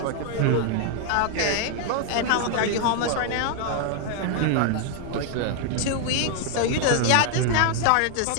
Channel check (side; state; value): both; different; correlation 0.00